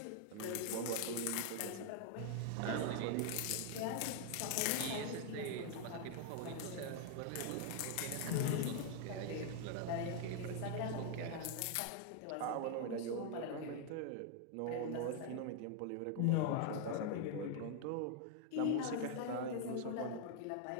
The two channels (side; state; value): both; different; correlation 0.00